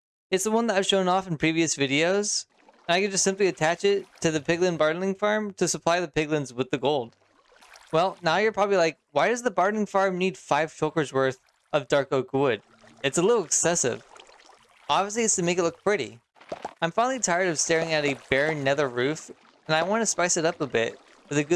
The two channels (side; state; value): both; identical; correlation 1.00